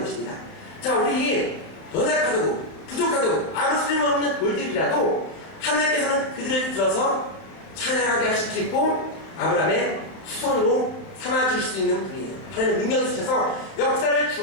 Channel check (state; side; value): late; right; 31 ms